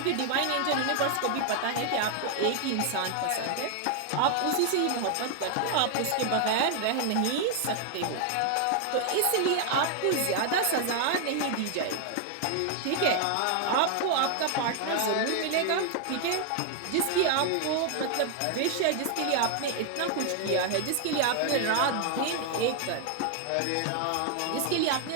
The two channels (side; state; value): both; different; correlation 0.00